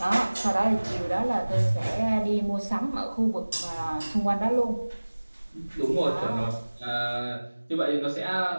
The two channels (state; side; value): inverted; both; correlation -1.00